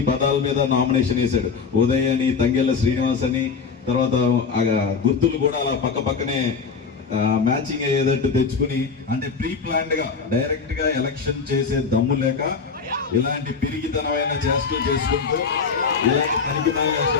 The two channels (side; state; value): right; quieter; 5.4 dB